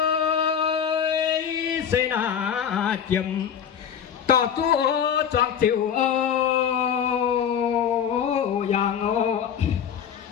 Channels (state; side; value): quieter; right; 8.3 dB